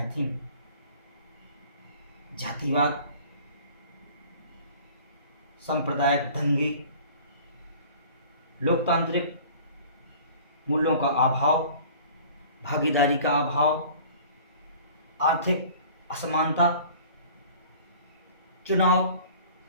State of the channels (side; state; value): both; inverted; correlation -0.47